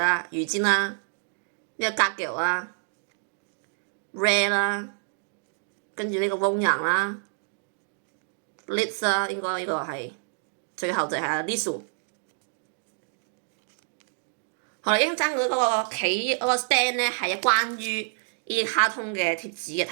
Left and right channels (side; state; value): left; silent; digital silence